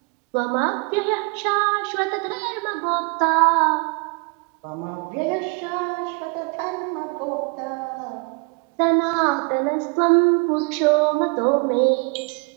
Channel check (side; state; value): left; quieter; 31.3 dB